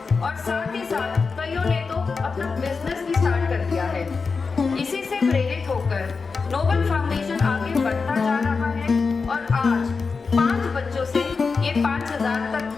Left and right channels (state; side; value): quieter; right; 4.7 dB